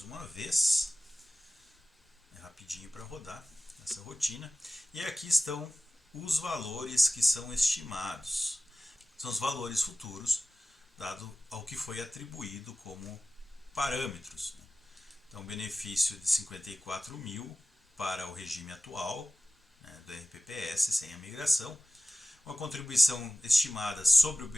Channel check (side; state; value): both; normal; correlation 0.96